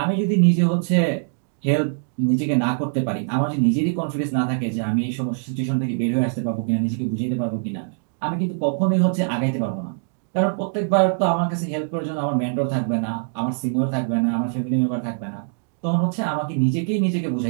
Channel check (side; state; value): left; silent; digital silence